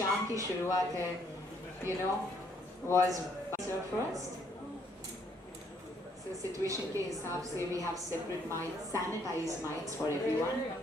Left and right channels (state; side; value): normal; both; correlation 0.68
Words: की शुरुआत है, you know, was first. So situation के हिसाब से we have separate mics, sanitized mics for everyone.